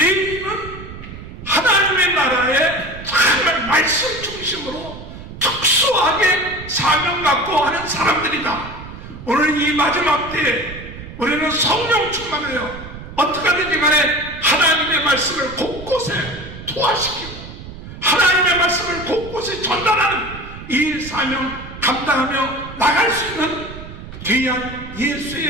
하나님의 나라에 정말 말씀 중심으로 특수하게 사명 갖고 하는 사람들이다. 오늘 이 마지막 때에 우리는 성령 충만해요. 어떻게 하든지 간에 하나님의 말씀을 곳곳에 투하시키고 하나님의 말씀을 곳곳에 전달하는 이 사명 감당하며 나갈 수 있는 귀한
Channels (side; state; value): right; noise; rumble, 13 dB below the sound